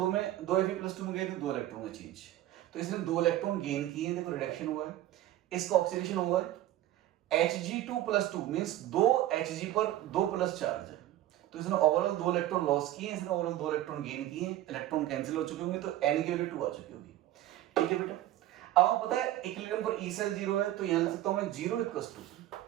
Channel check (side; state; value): left; quieter; 14.1 dB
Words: Fe+2 में गए तो 2 इलेक्ट्रॉन का चेंज, तो इसने 2 इलेक्ट्रॉन गेन किए, देखो रिडक्शन हुआ है, इसका ऑक्सीडेशन हुआ है, Hg2+2 मींस 2 Hg पर 2 प्लस चार्ज है, तो इसने ओवरऑल 2 इलेक्ट्रॉन लॉस किए, इसने ओवरऑल 2 इलेक्ट्रॉन गेन किए, इलेक्ट्रॉन कैंसिल हो चुके होंगे, तो n की वैल्यू 2 आ चुकी होगी। ठीक है बेटा, अब आपको पता है इक्विलिब्रियम पर E सेल 0 है, तो यहां लिख सकता हूं मैं 0 =